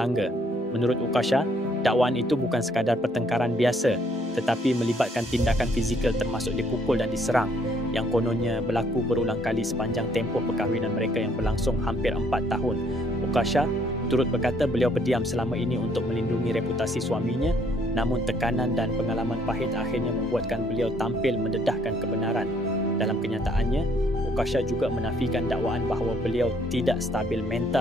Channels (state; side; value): normal; both; correlation 0.66